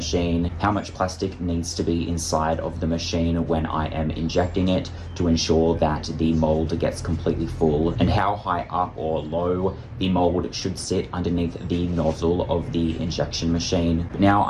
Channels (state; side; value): identical; both; correlation 1.00